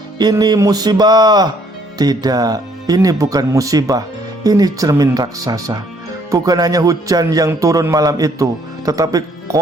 ini musibah. Tidak, ini bukan musibah, ini cermin raksasa. Bukan hanya hujan yang turun malam itu, tetapi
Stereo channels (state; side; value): normal; both; correlation 0.65